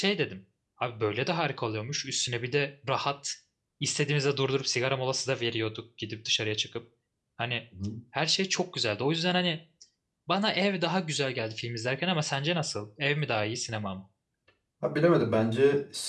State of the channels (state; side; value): identical; both; correlation 1.00